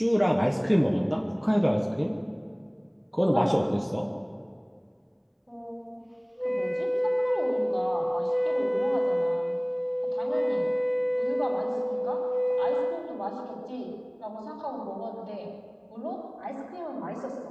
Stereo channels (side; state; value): both; identical; correlation 1.00